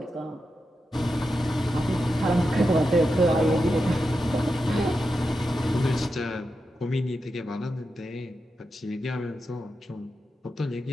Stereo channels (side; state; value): both; normal; correlation 0.88